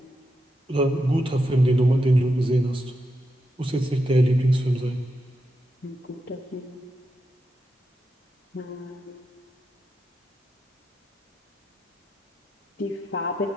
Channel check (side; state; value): both; normal; correlation 0.86